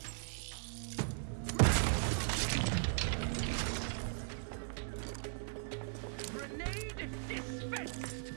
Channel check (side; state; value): left; silent; digital silence